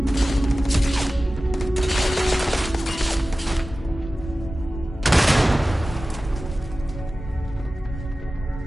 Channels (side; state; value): both; normal; correlation 0.96